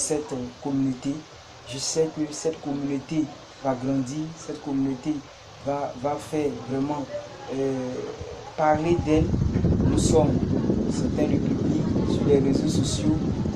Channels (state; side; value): identical; both; correlation 1.00